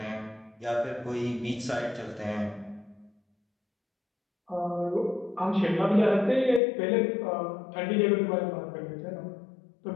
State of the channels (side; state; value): right; drops out; at 6.6 s